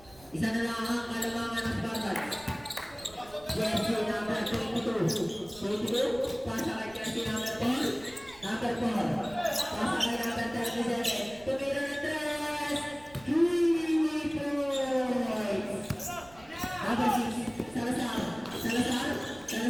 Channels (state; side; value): noise; right; rumble, 23 dB below the sound